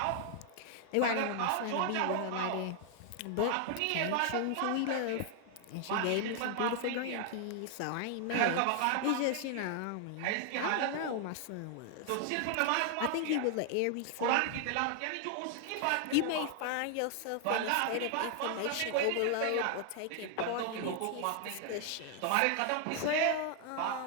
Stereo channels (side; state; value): both; different; correlation 0.00